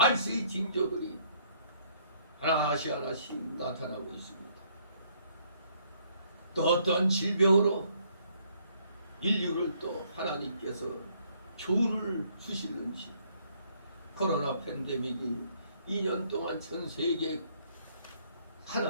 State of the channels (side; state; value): both; inverted; correlation -0.66